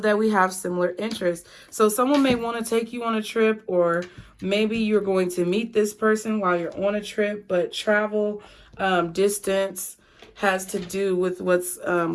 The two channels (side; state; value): both; identical; correlation 1.00